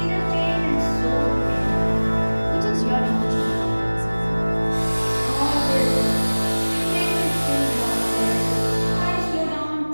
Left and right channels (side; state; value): both; inverted; correlation -1.00